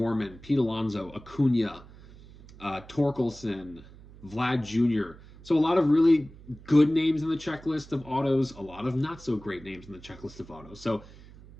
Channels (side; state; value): right; noise; hum, 20 dB below the sound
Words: Pete Alonso, Acuna, Torkelson, Vlad Jr. So a lot of really good names in the checklist of autos, a lot of not so great names in the checklist of autos. So,